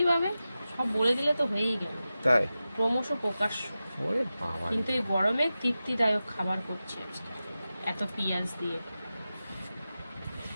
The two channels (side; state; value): both; inverted; correlation -0.94